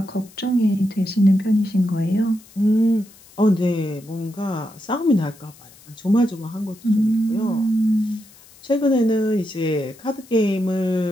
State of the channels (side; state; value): left; noise; hiss, 25 dB below the sound